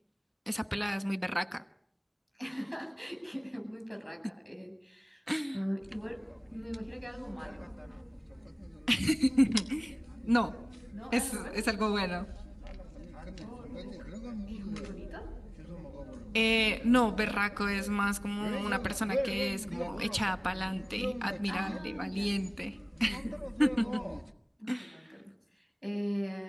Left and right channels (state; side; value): identical; both; correlation 1.00